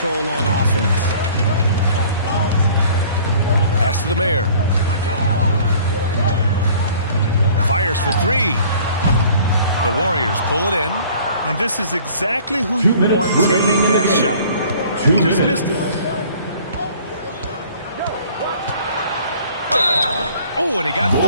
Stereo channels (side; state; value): both; inverted; correlation -0.52